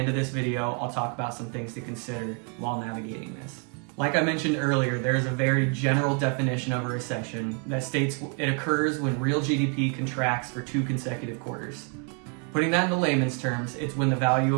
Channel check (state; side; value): quieter; left; 39.6 dB